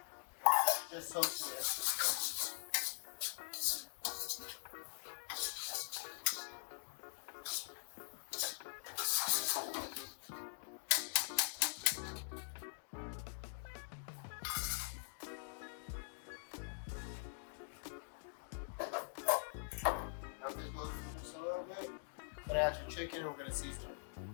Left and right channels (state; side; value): silent; right; digital silence